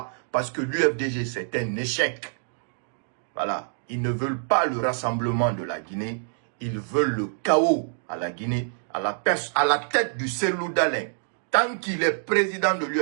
Parce que l'UFDG, c'est un échec. Voilà. Ils ne veulent pas le rassemblement de la Guinée. Ils veulent le chaos à la Guinée, à la tête du Cellou Dalein. Tant qu'il est président de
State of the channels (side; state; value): left; silent; digital silence